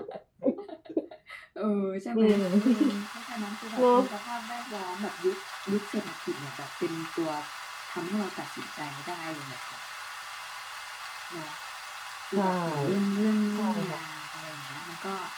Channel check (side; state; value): both; identical; correlation 1.00